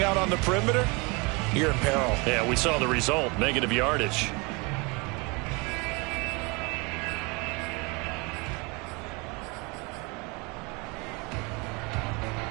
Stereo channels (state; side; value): quieter; left; 28.5 dB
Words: out on the perimeter, you're in peril. Yeah, we saw the result, negative yardage.